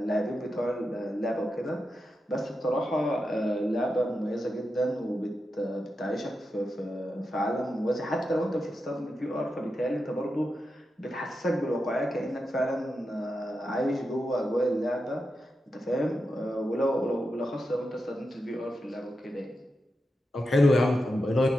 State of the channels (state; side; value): normal; both; correlation 0.88